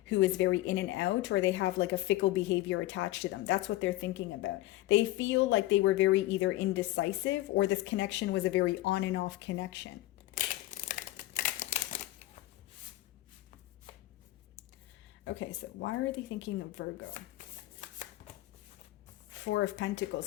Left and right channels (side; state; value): right; quieter; 16.6 dB